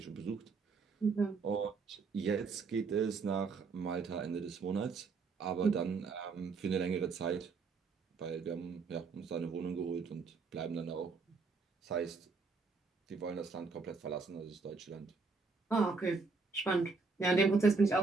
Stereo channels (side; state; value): left; quieter; 4.5 dB